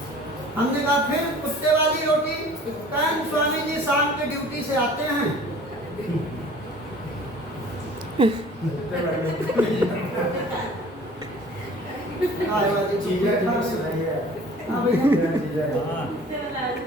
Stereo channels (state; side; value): normal; both; correlation 0.48